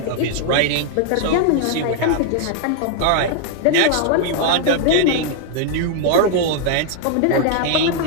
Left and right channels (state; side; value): different; both; correlation 0.00